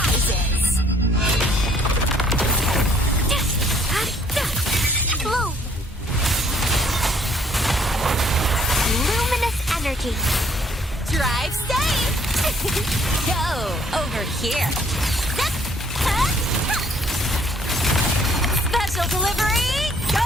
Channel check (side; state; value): both; normal; correlation 0.63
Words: Bloom. Luminous energy. Drive safe. Go over here. Special delivery.